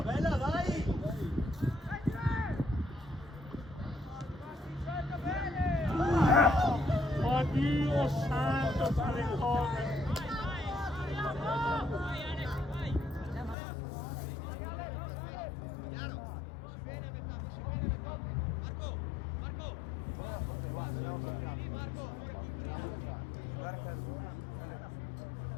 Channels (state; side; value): drops out; right; at 13.6 s